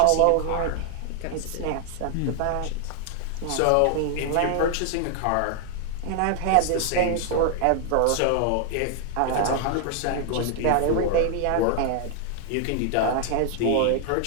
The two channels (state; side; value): different; both; correlation 0.00